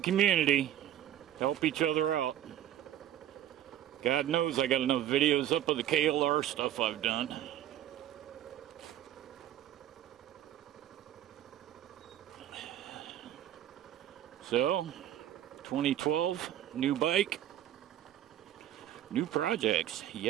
help each other out. God knows I got enough videos up of the KLR stuff I've done. So, 2012, new bike, new projects,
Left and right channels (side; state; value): left; quieter; 11.8 dB